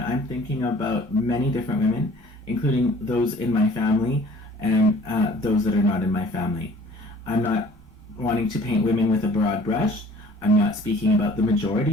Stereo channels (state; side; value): normal; both; correlation 0.52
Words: I'm thinking about many different women, including those in my family and those that are not in my family. I'm not wanting to paint women with a broad brush. I'm not speaking about the